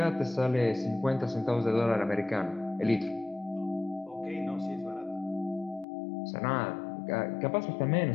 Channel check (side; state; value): right; drops out; at 5.9 s